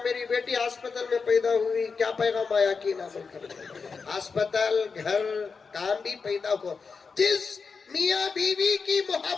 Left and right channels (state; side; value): quieter; right; 5.1 dB